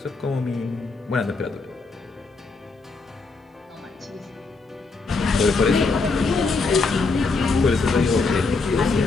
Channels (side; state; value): right; quieter; 4.0 dB